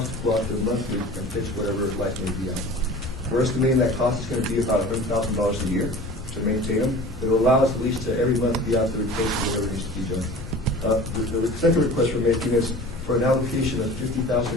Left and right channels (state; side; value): normal; both; correlation 0.40